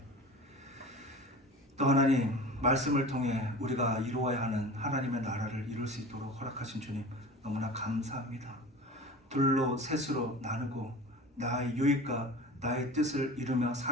또 하나님 말씀을 통해 우리가 이루어야 하는 하나님의 나라를 이룰 수 있도록 허락하신 주님 너무나 감사합니다. 둘로 셋으로 나누고 나의 유익과 나의 뜻을 이루며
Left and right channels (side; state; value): both; normal; correlation 0.36